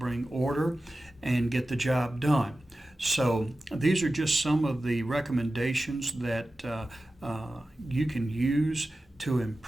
order and get the job done. So these are just some of the recommendations that you can use to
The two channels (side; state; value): both; normal; correlation 0.95